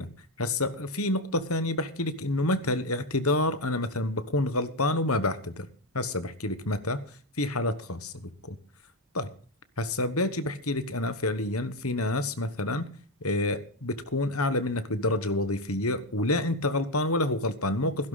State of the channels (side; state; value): both; normal; correlation 0.10